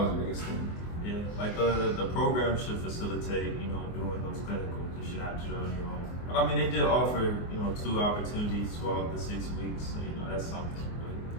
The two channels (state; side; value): late; right; 24 ms